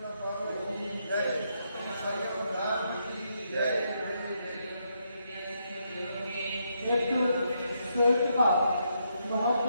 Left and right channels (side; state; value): both; inverted; correlation -0.78